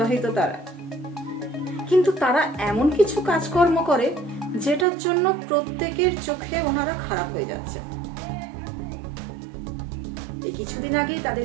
তারা, কিন্তু তারা এমন কিছু কাজকর্ম করে যেটার জন্য প্রত্যেকের চোখে ওনারা খারাপ হয়ে যাচ্ছে। এই কিছুদিন আগেই তাদের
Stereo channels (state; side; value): drops out; left; at 4.9 s